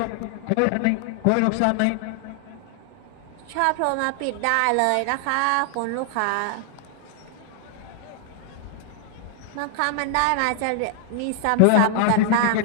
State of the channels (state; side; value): different; both; correlation 0.00